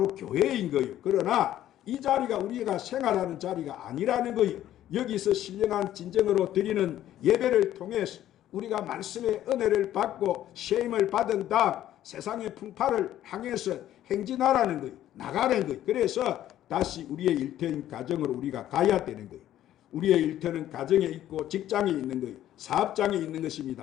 교회인 거예요. 그러나 이 자리가 우리가 생활하는 자리가 아니라는 거예요. 여기서 신령한 진정으로 드리는 예배를 통해서 우리가 말씀의 은혜를 받고 쉐임을 받은 다음 세상의 풍파를 향해서 행진하라는 거예요. 나가는 거예요. 그래서 다시 우리의 일터인 가정으로 우리가 가야 되는 거예요. 우리의 일터는 가정에 있고 직장에 있는 거예요. 사업장에 있는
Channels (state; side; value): quieter; right; 12.5 dB